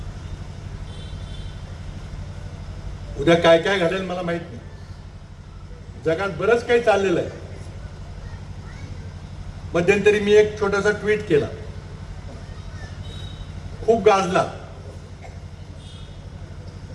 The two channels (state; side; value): identical; both; correlation 1.00